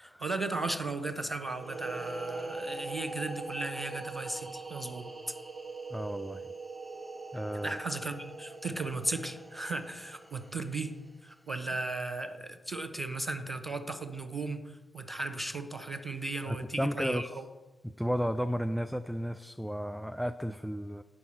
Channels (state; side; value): normal; both; correlation 0.89